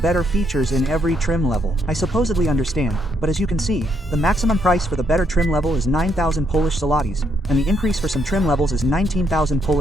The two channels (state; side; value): normal; both; correlation 0.74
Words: features in every trim level. I supposedly understand, but as you can see, the maximum price for the better trim level is 9,000 Polish zlotys, and the increase for some trim levels is 19,000